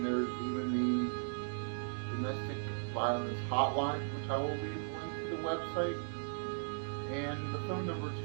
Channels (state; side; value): silent; left; digital silence